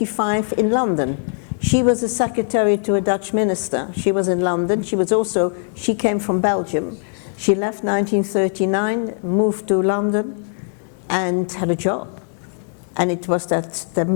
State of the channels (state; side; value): silent; right; 57 dB below the other